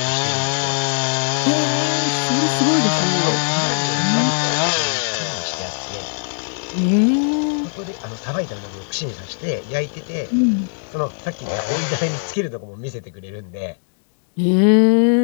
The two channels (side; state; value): right; silent; digital silence